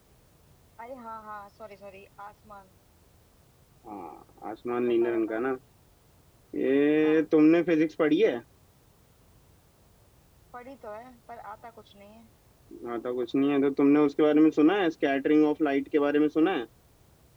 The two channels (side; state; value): both; identical; correlation 1.00